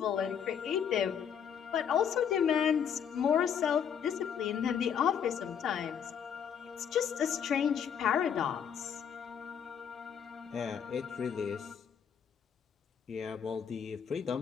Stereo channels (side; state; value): right; quieter; 7.9 dB